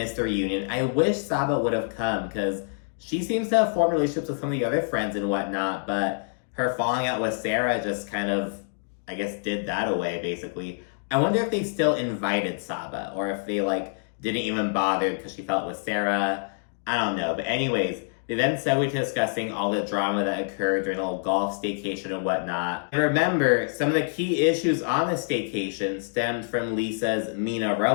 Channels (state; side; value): silent; right; digital silence